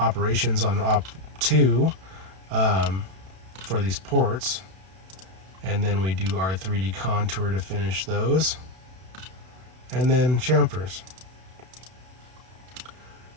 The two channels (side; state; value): left; late; 32 ms